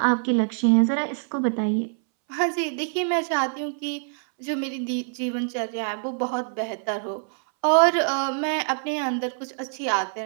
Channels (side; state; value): left; silent; 62 dB below the other